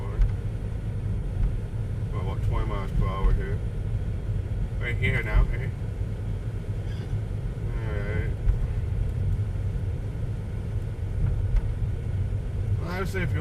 We're about 20 miles per hour here. Right here now, hey? Alright. Well, I would say if you're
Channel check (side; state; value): both; identical; correlation 1.00